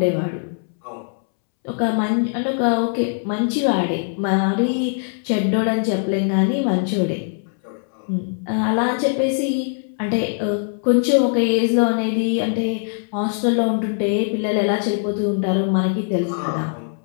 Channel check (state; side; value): silent; right; 65 dB below the other